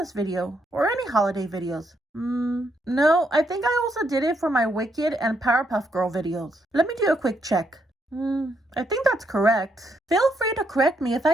video, or any holiday videos. No, I think I also did it for my Wicked and Powerpuff Girl videos. Let me do a quick check. I think that's correct. Feel free to correct me if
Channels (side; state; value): both; normal; correlation 0.76